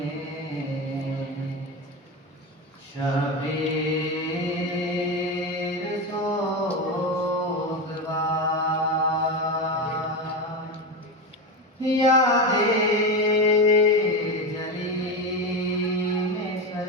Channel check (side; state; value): both; normal; correlation 0.17